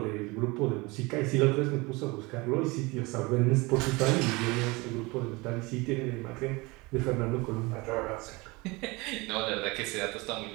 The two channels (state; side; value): quieter; left; 24.5 dB